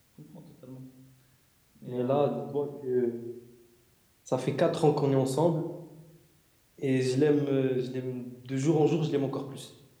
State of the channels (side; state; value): both; identical; correlation 1.00